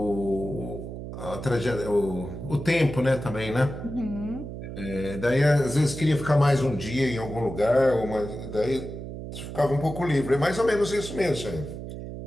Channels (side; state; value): right; noise; hum, 9 dB below the sound